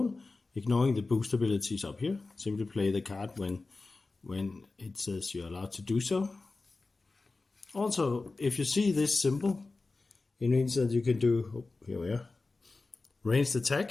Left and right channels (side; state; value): right; quieter; 3.6 dB